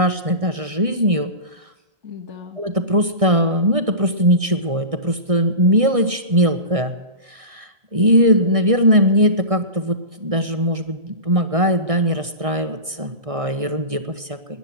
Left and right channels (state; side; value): late; left; 1.6 ms